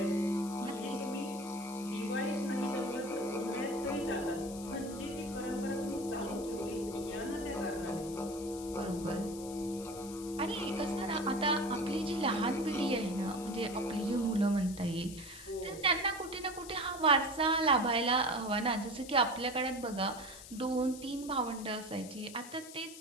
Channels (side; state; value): left; noise; hiss, 15 dB below the sound